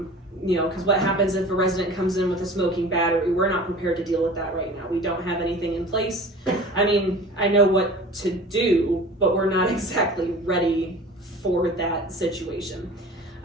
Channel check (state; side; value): normal; both; correlation 0.40